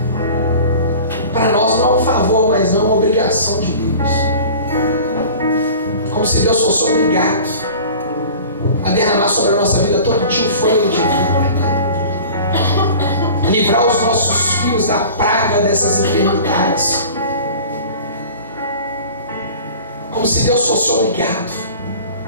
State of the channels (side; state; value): both; inverted; correlation -0.41